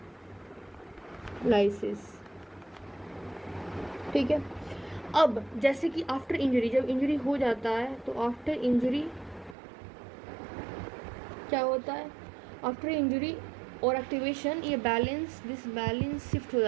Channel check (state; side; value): drops out; left; at 9.6 s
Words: ठीक है। अब जैसे कि आफ्टर इंजरी, जब इंजरी हो जाता है तो आफ्टर इंजरी क्या होता है, आफ्टर इंजरी और एक्टिवेशन ये बैलेंस शिफ्ट हो